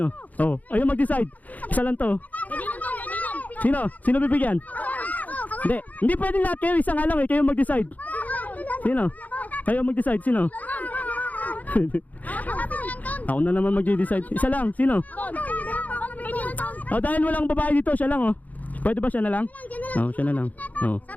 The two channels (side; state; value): right; late; 0.077 ms